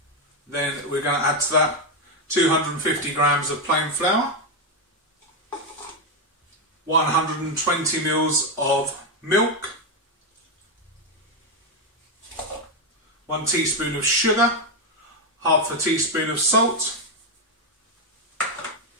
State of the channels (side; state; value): both; normal; correlation 0.04